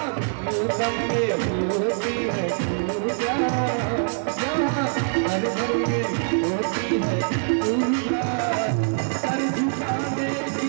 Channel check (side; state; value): left; silent; digital silence